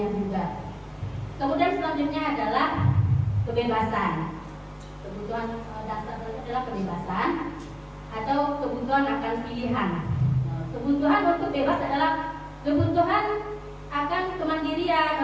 juga. Kemudian selanjutnya adalah kebebasan. Kebutuhan dasar adalah kebebasan atau kebutuhan akan pilihan. Kebutuhan untuk bebas adalah kebutuhan akan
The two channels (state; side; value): identical; both; correlation 1.00